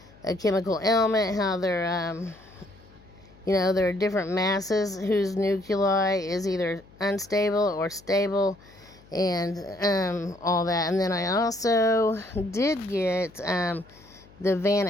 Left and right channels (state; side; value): noise; left; hum, 25 dB below the sound